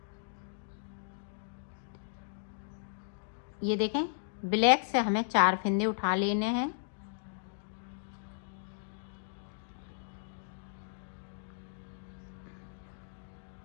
ये देखें ब्लैक से हमें 4 फिंदे उठा लेने हैं।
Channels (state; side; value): silent; right; digital silence